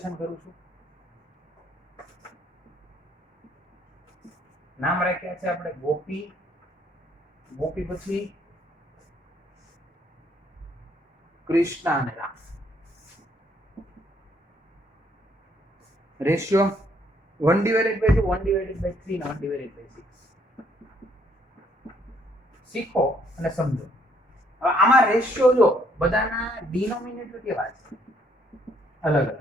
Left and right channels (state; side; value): normal; both; correlation 0.68